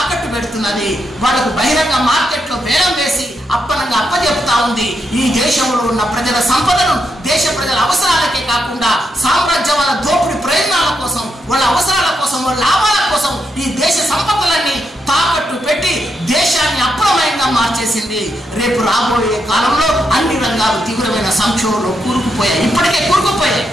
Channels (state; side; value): normal; both; correlation 0.82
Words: పెడుతున్నది. వాళ్ళకు బహిరంగ మార్కెట్లో బేరం వేసి అప్పనంగా అప్పచెప్తా ఉంది. ఈ దేశంలో ఉన్న ప్రజల సంపదను దేశ ప్రజల అవసరాలకే కాకుండా సామ్రాజ్యవాద దోపిడీ ప్రయోజనాల కోసం, వాళ్ళ అవసరాల కోసం, వాళ్ళ లాభాల కోసం ఈ దేశ సంపదలన్నీ తాకట్టు పెట్టి దేశాన్ని అప్రమయంగా మార్చేసింది. రేపు రాబోయే కాలంలో అన్ని రంగాలు తీవ్రమైన సంక్షోభంలో కూరుకుపోయాయి, ఇప్పటికే కూరుకుపోయాయి.